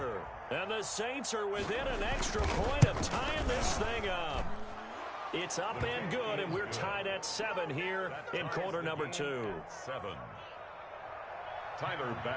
And the Saints are within an extra point of tying this thing up. It's up and good, and we're tied at 7 here in quarter number 2. 7. Tyler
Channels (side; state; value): both; identical; correlation 1.00